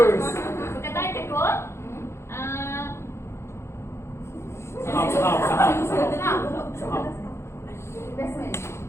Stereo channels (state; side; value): late; right; 0.13 ms